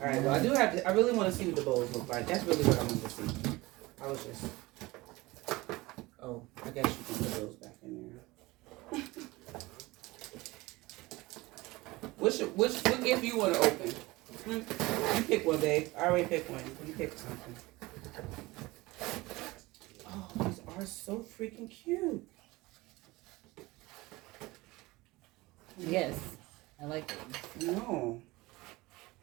All right, well, I really want to see what the bowls look like. That's really what I want to see. I was just, I guess you can put those back in there. What gift you want to open? You pick one, babe. I already picked one. You pick something. Oh, these are so freaking cute. Yes. I like it. No.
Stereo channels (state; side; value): quieter; left; 21.1 dB